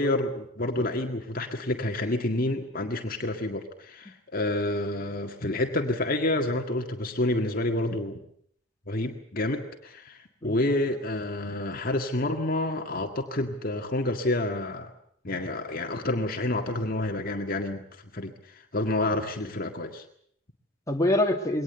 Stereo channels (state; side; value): normal; both; correlation 0.34